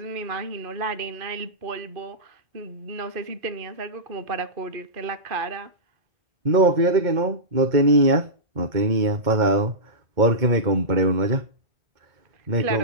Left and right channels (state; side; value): late; left; 2.1 ms